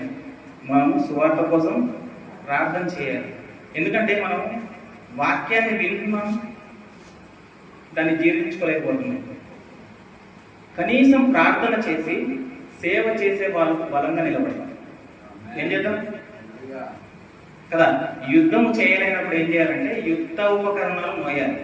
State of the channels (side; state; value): both; identical; correlation 1.00